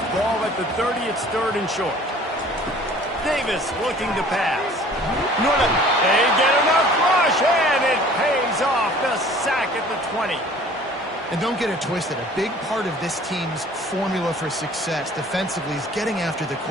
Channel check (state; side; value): normal; both; correlation 0.50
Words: Ball at the 30, it's 3rd and short. Davis looking to pass. They get enough rush, and it pays off. The sack at the 20. And don't get it twisted. A big part of this team's formula for success defensively is getting after the